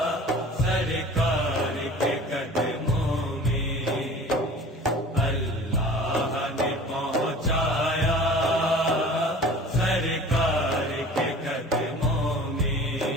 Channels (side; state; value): both; normal; correlation 0.43